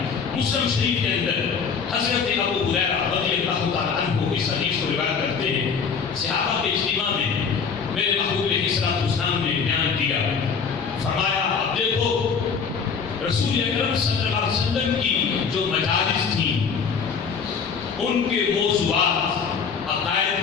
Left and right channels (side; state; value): right; quieter; 6.0 dB